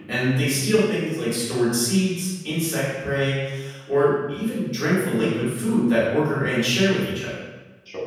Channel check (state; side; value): identical; both; correlation 1.00